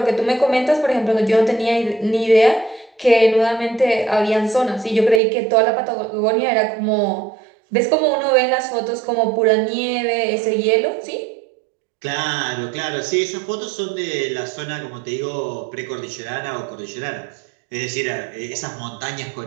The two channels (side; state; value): left; drops out; at 5.2 s